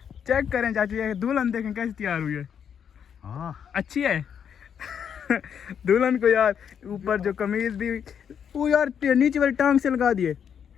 चेक करें चाचू, ये दुल्हन देखें कैसी तैयार हुई है। हाँ अच्छी है। दुल्हन को यार ऊपर जो कमीज दी वो यार नीचे वाली टांग से लगा दिए।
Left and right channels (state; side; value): quieter; right; 8.0 dB